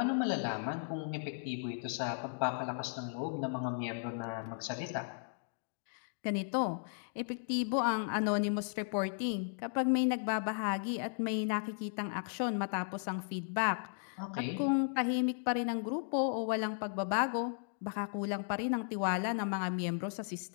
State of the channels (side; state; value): right; silent; digital silence